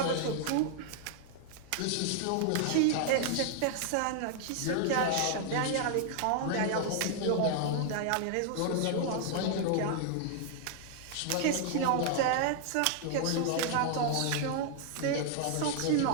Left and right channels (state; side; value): different; both; correlation 0.00